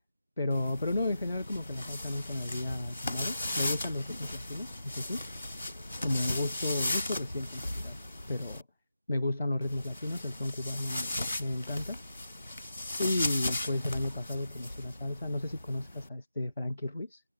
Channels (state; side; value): inverted; both; correlation -0.89